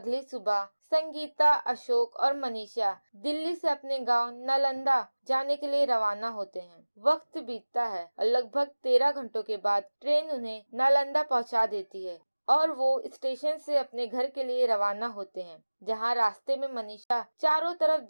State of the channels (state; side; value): inverted; both; correlation -1.00